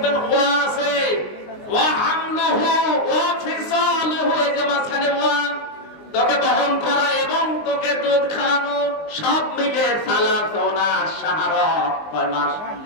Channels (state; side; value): late; right; 19 ms